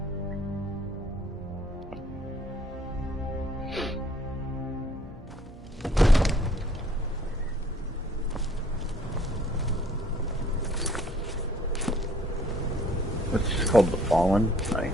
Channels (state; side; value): normal; both; correlation 0.60